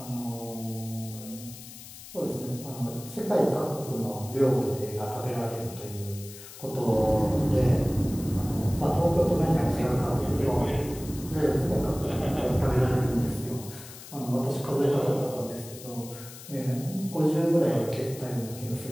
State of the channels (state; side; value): noise; left; hiss, 15 dB below the sound